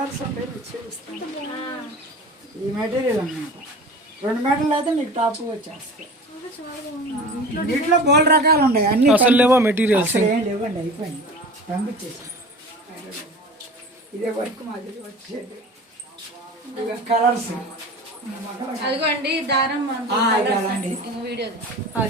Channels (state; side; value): normal; both; correlation 0.37